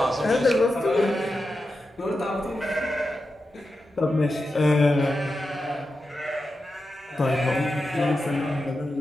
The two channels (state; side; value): normal; both; correlation 0.90